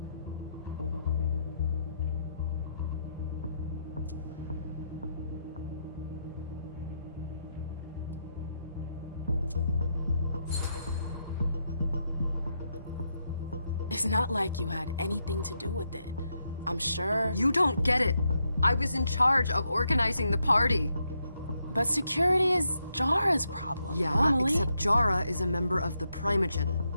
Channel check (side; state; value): both; inverted; correlation -0.81